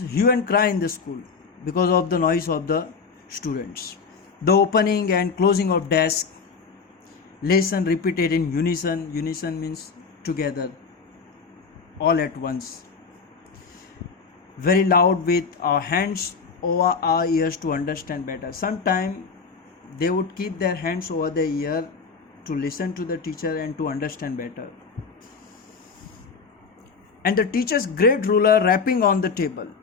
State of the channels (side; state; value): right; quieter; 5.2 dB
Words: and cry in the school because of the noise of the students. The opening and closing of desk, lesson repeated in unison. Unison means together, all at once. Very loud with our hands over our ears to understand better. Sometimes they would keep their hands over their ear to listen to the teacher and to understand better. And the teacher's great ruler rapping on the table.